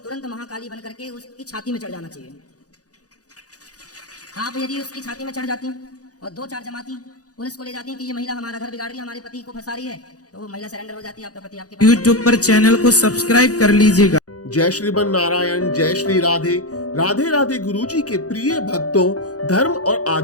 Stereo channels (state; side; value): late; right; 0.67 ms